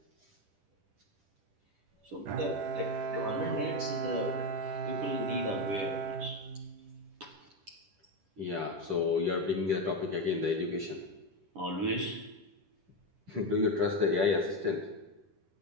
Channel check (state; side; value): late; left; 10 ms